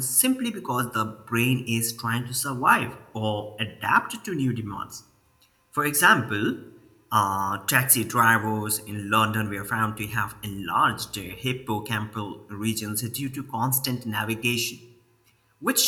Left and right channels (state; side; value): identical; both; correlation 1.00